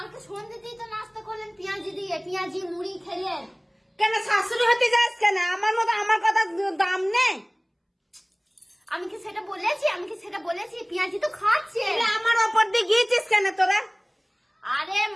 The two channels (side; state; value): both; identical; correlation 1.00